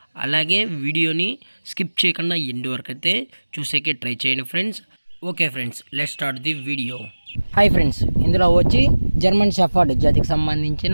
అలాగే వీడియోని స్కిప్ చేయకుండా ఎండ్ వరకు అయితే చూసేకే ట్రై చేయండి friends. Okay friends, let's start the video. Hi friends, ఇందులో వచ్చి జర్మన్ షెఫర్డ్ జాతికి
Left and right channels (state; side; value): inverted; both; correlation -1.00